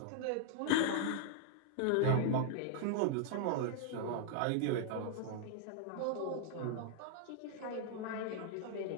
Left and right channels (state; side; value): different; both; correlation -0.01